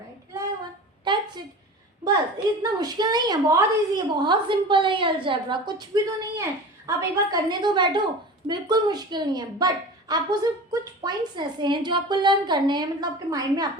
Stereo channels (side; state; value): both; normal; correlation 0.35